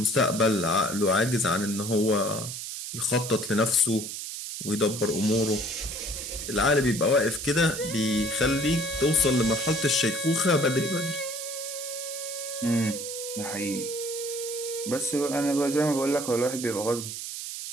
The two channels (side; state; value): right; noise; hiss, 7 dB below the sound